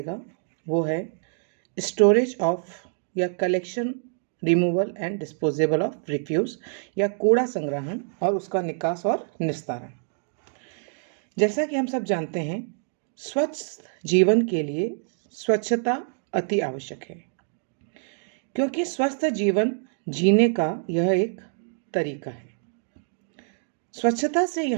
वो है स्टोरेज ऑफ या collection, removal and disposable of refuse या कूड़ा संग्रहण और उसका निकास और निस्तारण। जैसा कि हम सब जानते हैं, स्वच्छ जीवन के लिए स्वच्छता अति आवश्यक है, क्योंकि स्वस्थ जीवन जीने का यह एक तरीका है। स्वच्छता से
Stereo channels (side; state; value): left; silent; digital silence